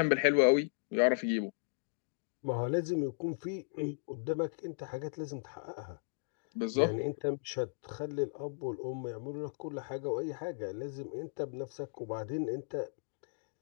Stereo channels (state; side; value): silent; right; digital silence